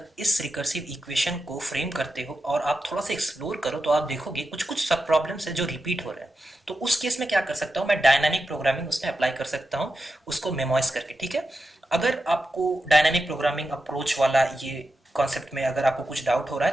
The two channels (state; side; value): normal; both; correlation 0.90